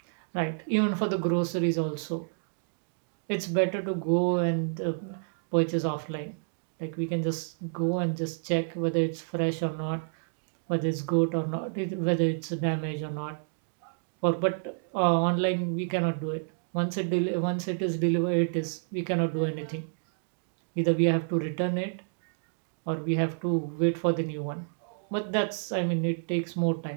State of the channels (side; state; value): left; silent; digital silence